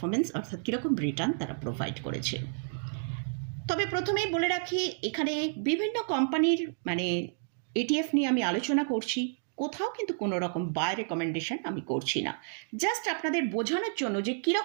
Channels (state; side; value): silent; left; digital silence